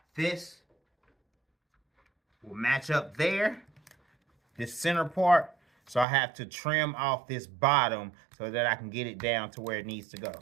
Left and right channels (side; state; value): left; drops out; at 6.1 s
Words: this will match up there, this center part. So I have to trim off this bottom so that I can get it down to where it needs to go.